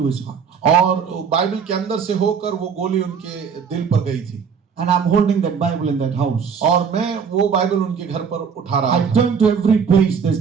his heart. और बाइबल के अंदर से होकर वो गोली उनके दिल पर गई थी। And I'm holding that Bible in that house. और मैं वो बाइबल उनके घर पर उठा रहा I था turn to every page.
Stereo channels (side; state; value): left; quieter; 6.5 dB